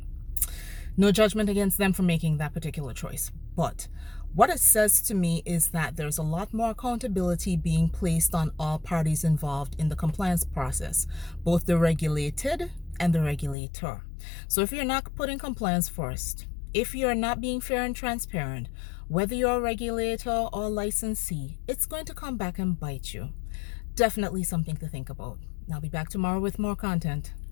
No judgment against them for making that particular choice. But what it says to me is that there's a lot more accountability being placed on all parties involved in the compliance process, both the regulated and the regulator. So if you're not putting compliance first, if you're not being fair and transparent, whether you're a regulator or licensee, it's going to come back and bite you. Definitely something to think about. I'll be back tomorrow with more content.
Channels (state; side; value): drops out; right; at 13.6 s